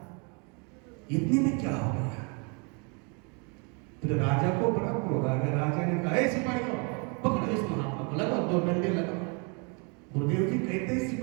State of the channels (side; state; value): left; quieter; 34.2 dB